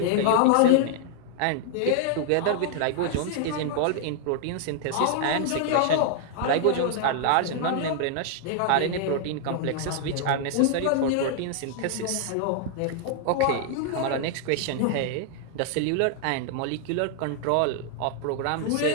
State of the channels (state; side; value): different; both; correlation 0.00